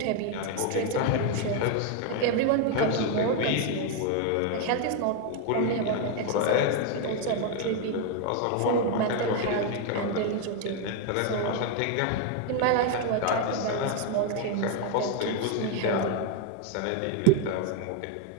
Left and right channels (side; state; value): both; different; correlation 0.01